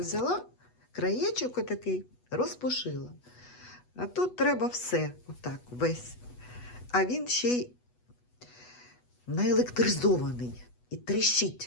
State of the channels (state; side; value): late; right; 8.1 ms